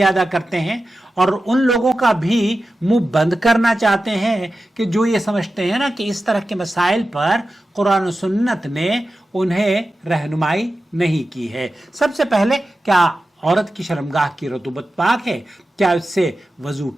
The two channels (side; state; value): both; normal; correlation 0.93